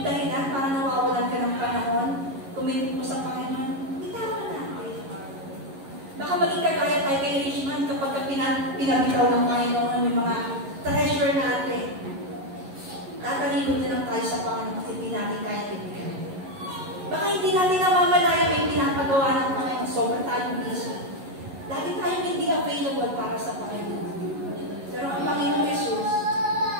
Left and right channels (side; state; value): left; late; 11 ms